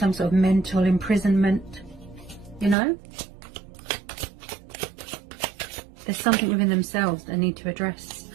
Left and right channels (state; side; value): drops out; left; at 2.8 s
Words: sort of mental imprisonment, you know? There's something within themselves they need to address.